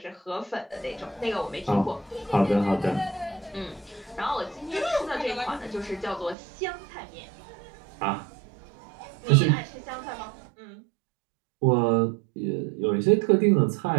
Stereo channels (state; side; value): drops out; left; at 6.4 s